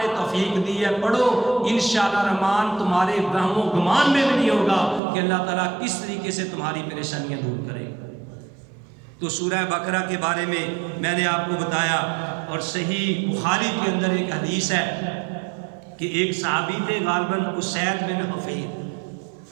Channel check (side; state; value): left; drops out; at 5.0 s